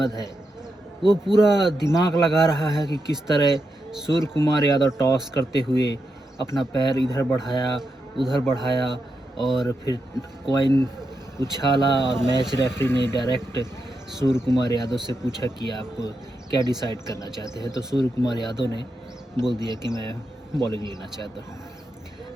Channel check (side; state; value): both; normal; correlation 0.85